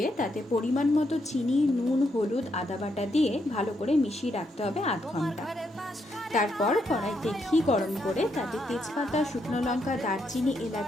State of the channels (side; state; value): both; normal; correlation 0.78